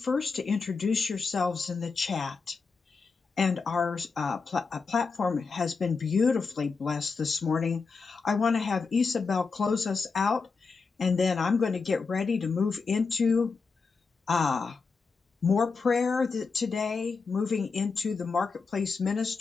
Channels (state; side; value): quieter; right; 4.7 dB